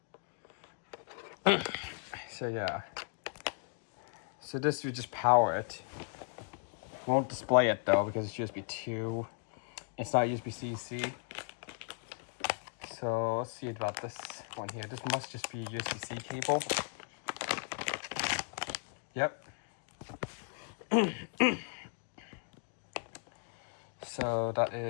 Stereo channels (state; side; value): silent; right; 54 dB below the other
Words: yeah. So this would just power it. Won't display it though because it's USB 2. It's not USB-C. So let's see about this one here. This must just be a USB-C cable. Yep. So that